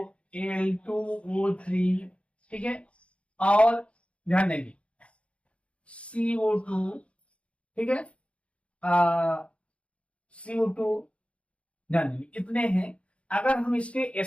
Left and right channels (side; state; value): right; late; 0.061 ms